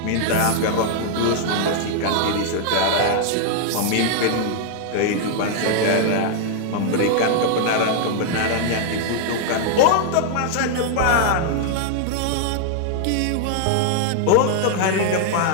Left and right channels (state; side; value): different; both; correlation 0.00